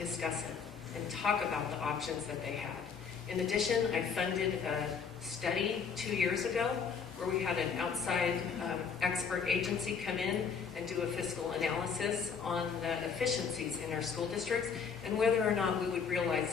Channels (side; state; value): right; quieter; 6.2 dB